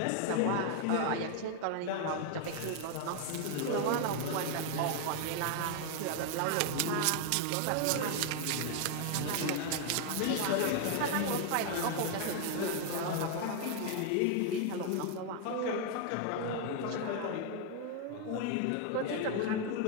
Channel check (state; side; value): different; both; correlation 0.01